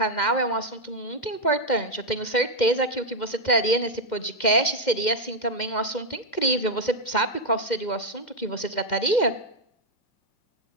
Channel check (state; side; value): late; right; 2.1 ms